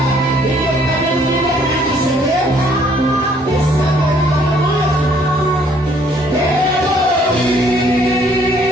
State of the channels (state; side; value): normal; both; correlation 0.63